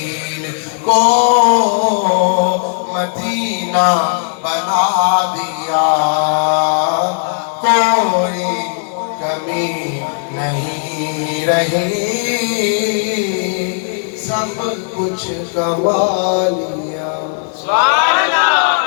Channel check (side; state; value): right; silent; digital silence